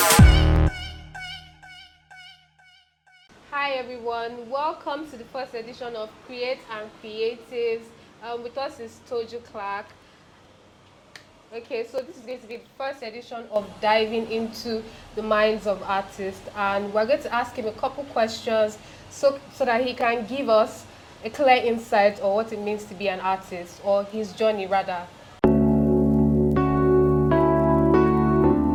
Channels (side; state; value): both; identical; correlation 1.00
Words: everyone, welcome to the first edition of Creath Creatives. With us is Toju Clarke. Okay, so this is going to be the first edition of diving into the minds of artists, and we're going to ask him a couple questions so that he can give us a clear insight on what it means to be an artist, or his journey rather.